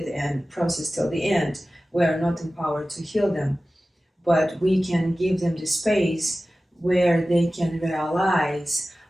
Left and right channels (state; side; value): normal; both; correlation 0.96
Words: and process till the end. We are not empowered to heal them, but we can give them the space where they can realize